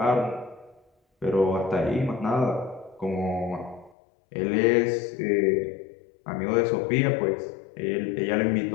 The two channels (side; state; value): right; drops out; at 3.9 s